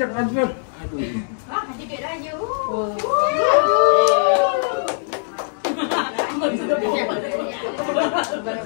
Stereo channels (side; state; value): right; silent; digital silence